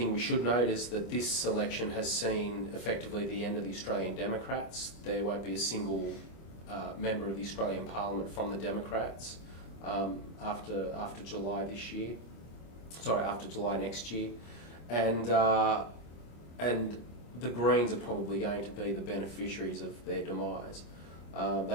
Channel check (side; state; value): right; late; 25 ms